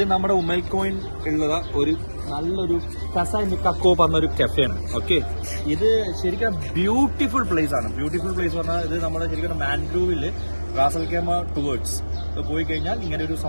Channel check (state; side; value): inverted; both; correlation -1.00